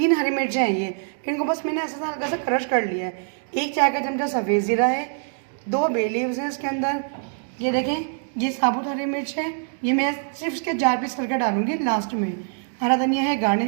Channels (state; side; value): silent; left; digital silence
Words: हरी मिर्चें हैं ये, इनको बस मैंने ऐसा हल्का सा क्रश कर लिया है। 1 चाय का चमचा सफ़ेद ज़ीरा है, 2 बे लीव्स हैं इसके अंदर। ये देखें, ये साबुत हरी मिर्च है, ये मैं सिर्फ इसके 4 पीस करके डालूंगी लास्ट में। हरा धनिया है